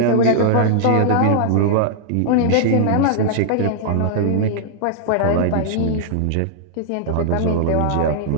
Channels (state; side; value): different; both; correlation -0.01